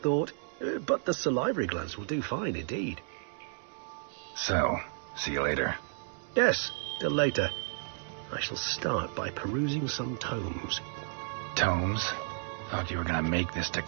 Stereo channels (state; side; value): silent; left; digital silence